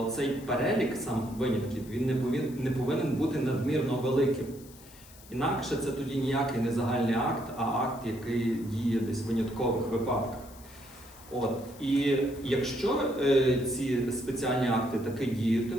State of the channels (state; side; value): noise; left; hiss, 21 dB below the sound